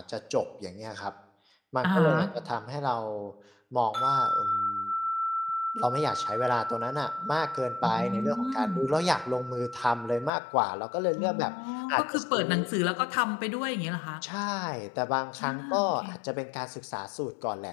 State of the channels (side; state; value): right; drops out; at 10.3 s